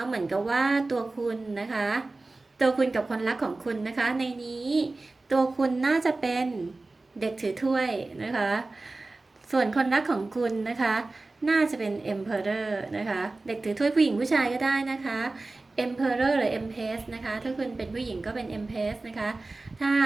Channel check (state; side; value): quieter; left; 3.3 dB